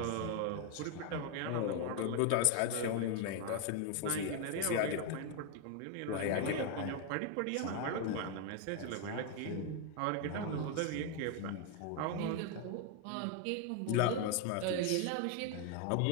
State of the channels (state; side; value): different; both; correlation 0.01